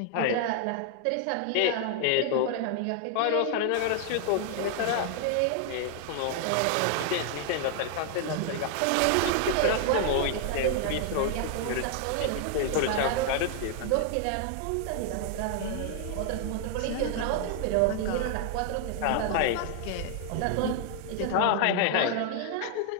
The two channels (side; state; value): both; different; correlation 0.00